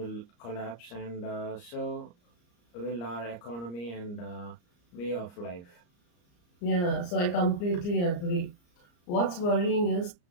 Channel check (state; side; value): late; right; 34 ms